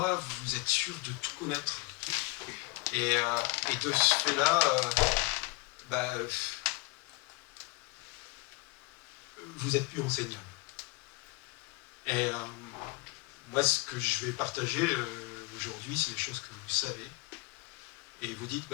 vous êtes sûr de tout connaître. Et de ce fait-là, vous êtes plus enseignable. Et moi, ce que je vais partager aujourd'hui, c'est des choses que vous savez. Et vous dites,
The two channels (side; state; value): right; quieter; 24.7 dB